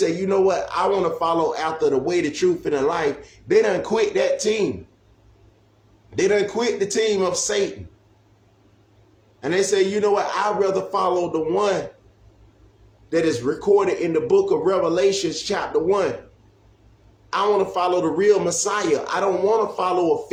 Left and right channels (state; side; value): identical; both; correlation 1.00